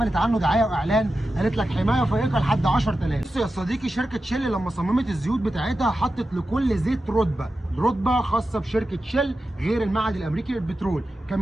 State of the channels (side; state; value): both; normal; correlation 0.92